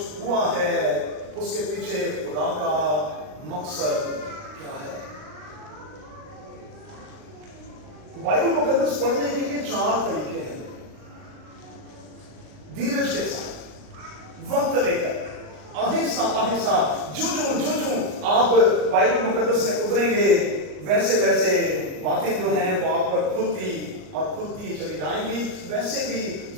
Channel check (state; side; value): late; left; 39 ms